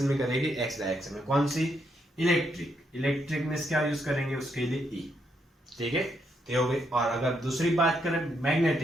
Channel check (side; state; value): both; normal; correlation 0.77